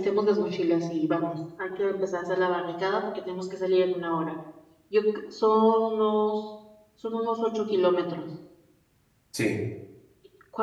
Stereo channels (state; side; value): identical; both; correlation 1.00